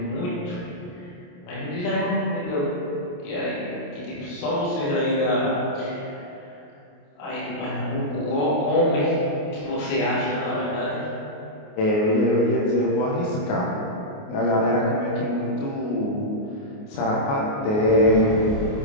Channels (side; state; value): right; late; 28 ms